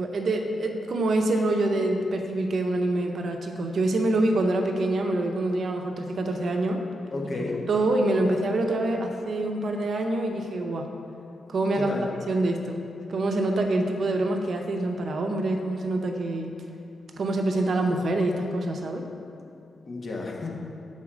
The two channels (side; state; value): both; normal; correlation 0.84